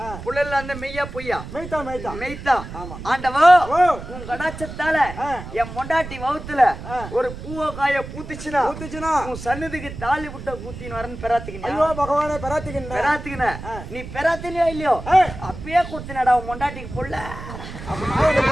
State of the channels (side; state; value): right; noise; rumble, 11 dB below the sound